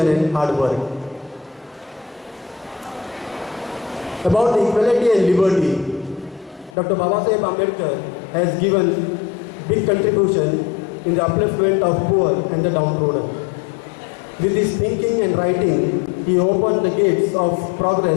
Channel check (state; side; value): drops out; right; at 6.8 s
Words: and hard work. About the equality and liberty, Dr. Babasaheb Ambedkar has given big contribution in the upliftment of poor and the downtrodden. With his thinking and writing, he opened the gates of